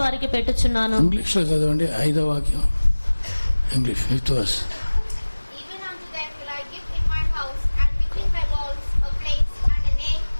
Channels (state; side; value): inverted; both; correlation -1.00